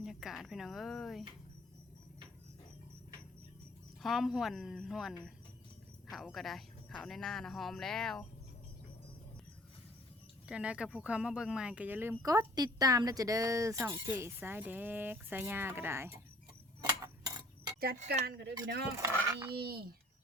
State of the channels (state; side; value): normal; both; correlation 0.55